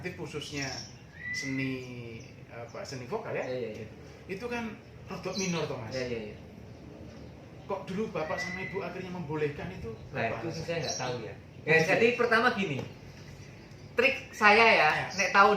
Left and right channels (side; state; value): both; identical; correlation 1.00